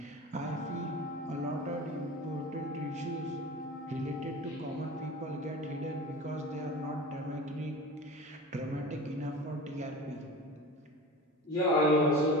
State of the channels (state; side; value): normal; both; correlation 0.34